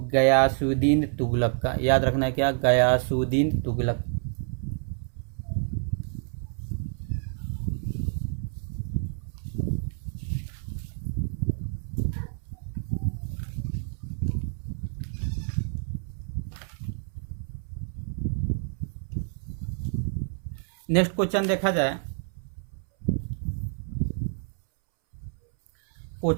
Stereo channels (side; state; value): left; silent; 59 dB below the other